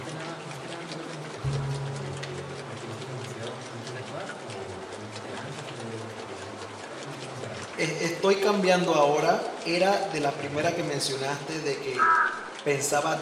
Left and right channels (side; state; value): both; identical; correlation 1.00